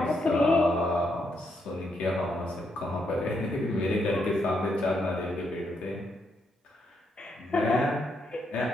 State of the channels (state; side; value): normal; both; correlation 0.78